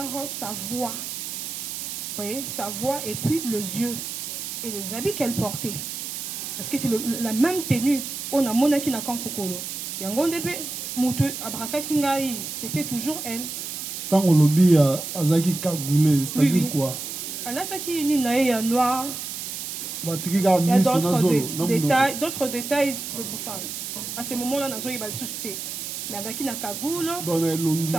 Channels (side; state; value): right; noise; hiss, 6 dB below the sound